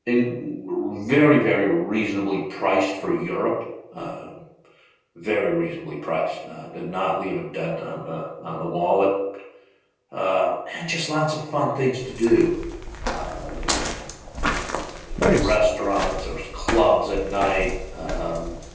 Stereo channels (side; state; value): both; identical; correlation 1.00